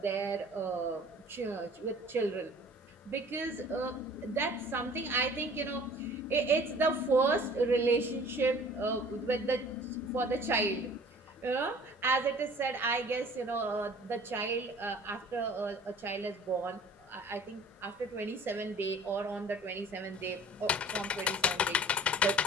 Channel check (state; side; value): normal; both; correlation 0.48